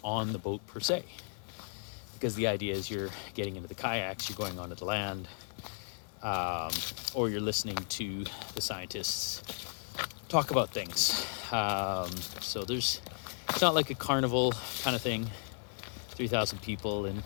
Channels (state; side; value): silent; right; digital silence